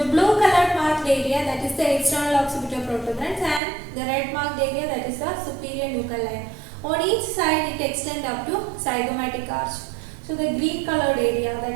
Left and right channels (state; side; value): drops out; left; at 3.6 s